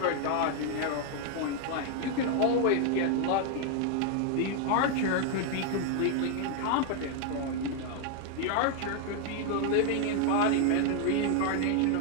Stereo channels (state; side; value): different; both; correlation 0.00